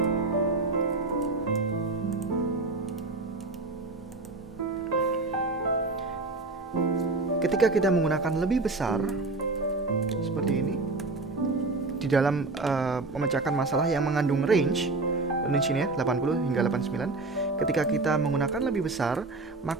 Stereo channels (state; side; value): quieter; left; 3.4 dB